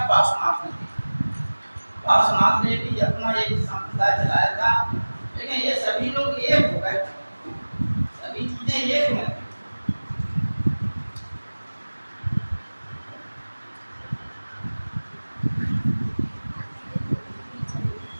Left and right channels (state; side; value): inverted; both; correlation -1.00